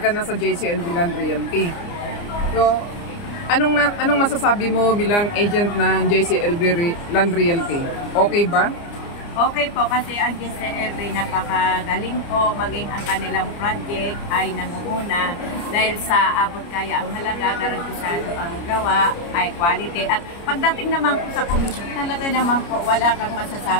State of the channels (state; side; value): late; right; 29 ms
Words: ka na sa JCLV Land Realty. So, anong masasabi mo bilang agent ng JCLV Land Realty? Okay ba? Okay po, kasi ang JCLV napakagaling po, maging ang kanilang project ay nangunguna dahil sa abot kaya ang halaga, garantisado ang gawa, ay quality. At pagdating naman po sa commission, talaga naman po wala kang